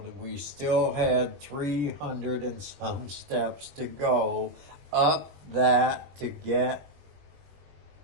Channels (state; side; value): late; left; 21 ms